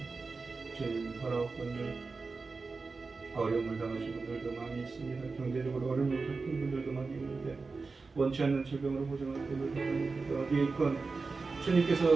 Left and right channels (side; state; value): left; quieter; 4.2 dB